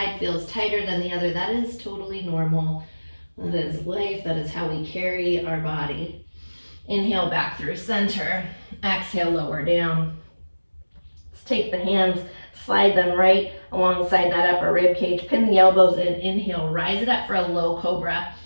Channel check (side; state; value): both; inverted; correlation -1.00